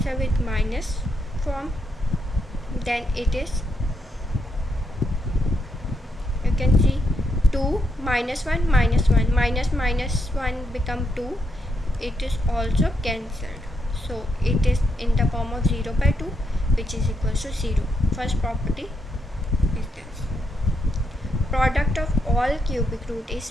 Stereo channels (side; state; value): both; normal; correlation 0.80